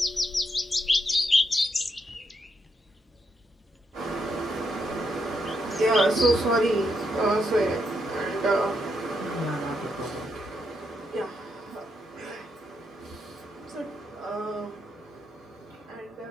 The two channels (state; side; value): normal; both; correlation 0.80